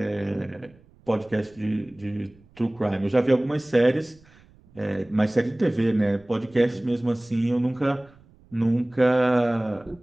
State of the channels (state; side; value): noise; right; rumble, 28 dB below the sound